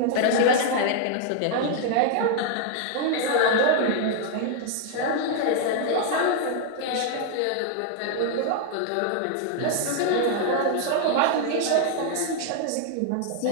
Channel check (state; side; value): different; both; correlation 0.00